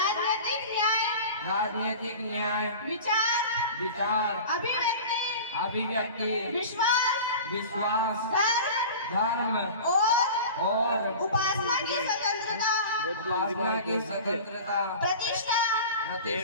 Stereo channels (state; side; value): inverted; both; correlation -0.36